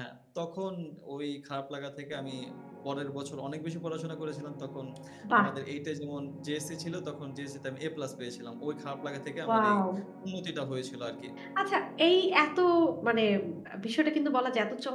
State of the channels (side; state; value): both; identical; correlation 1.00